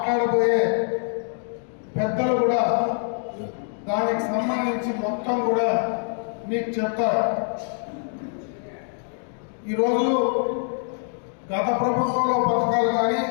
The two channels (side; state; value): right; silent; 59 dB below the other